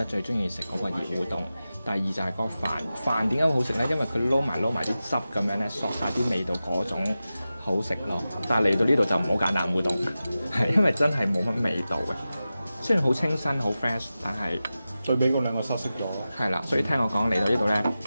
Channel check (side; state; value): both; inverted; correlation -0.94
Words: 最中意食嗰個熱烏冬。第二就係個飯點解好食咧？因為佢撈埋啲汁咁樣咧，索晒啲味道嗰種好食咯。但係嚟到呢度就唔好揀冷烏冬，係因為真係冇乜味道嘅。雖然好清新好 fresh， 但係最俾嗰兩個失色咗。係啦，所以聽我講嚟到呢度咧，